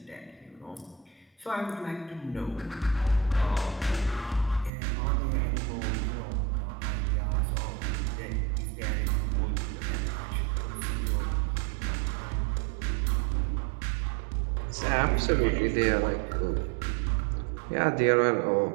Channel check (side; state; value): left; drops out; at 4.7 s